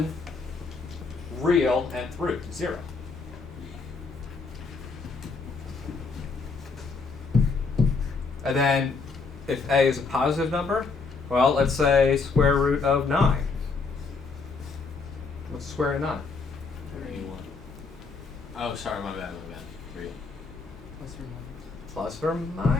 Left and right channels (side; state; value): right; quieter; 4.4 dB